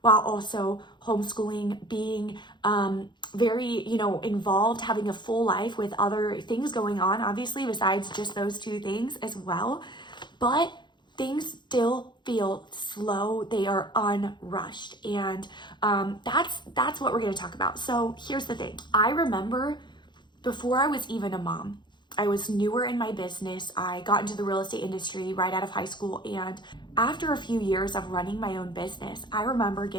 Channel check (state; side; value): late; right; 0.22 ms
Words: while also homeschooling, being very, involved, having a full life with other things going on, obviously, besides just those two things as well. But things still feel slow. They are unrushed. And that's what we're going to talk about. So here's the thing. I remember before I was even a mom, I was newer in my business. I got into the real estate industry right out of high school. And after a few years of running my own business, I remember